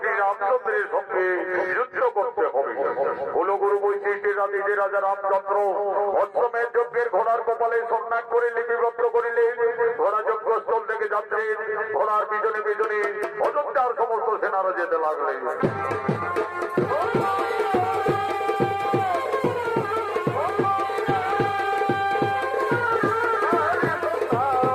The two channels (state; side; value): identical; both; correlation 1.00